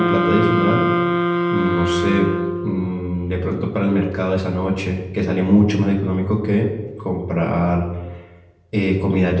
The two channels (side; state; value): both; identical; correlation 1.00